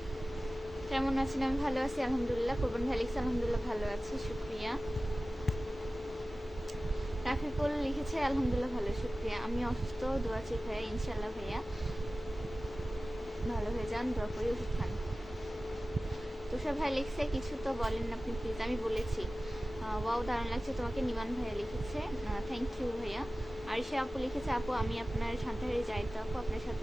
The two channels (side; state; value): both; normal; correlation 0.96